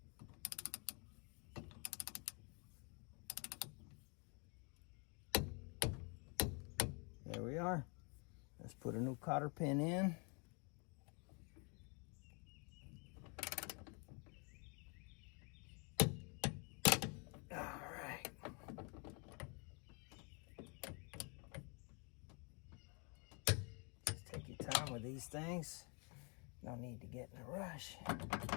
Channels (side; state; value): right; quieter; 34.5 dB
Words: There we are. Let's put a new cotter pin in. All right. Just take your time with these things. No need to get in a rush